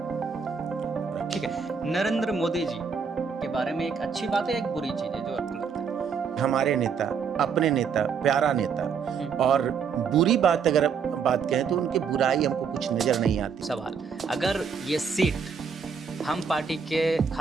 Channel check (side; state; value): left; quieter; 6.2 dB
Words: ठीक है, नरेंद्र मोदी जी के बारे में एक अच्छी बात है, एक बुरी चीज है जो आपको लगता है? हमारे नेता, अपने नेता, प्यारा नेता। और बुरी बात अगर बात कहें तो उनकी बुराई हमको कुछ नजर नहीं आती। सवाल, अगर ये सीट हम पार्टी के